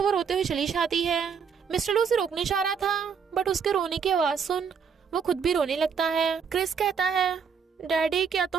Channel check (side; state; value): left; quieter; 6.5 dB